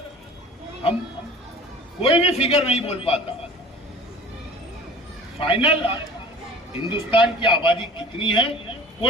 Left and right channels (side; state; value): both; normal; correlation 0.43